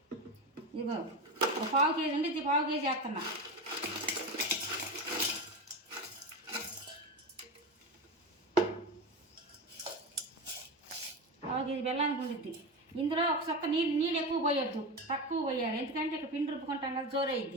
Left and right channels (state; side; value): normal; both; correlation 0.21